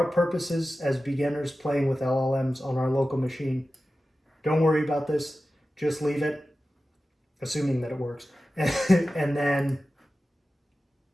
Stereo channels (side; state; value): both; normal; correlation 0.94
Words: purposes as beginners playing with LLMs on our local machine, don't worry about this. Just leave it, assuming that it works. And then,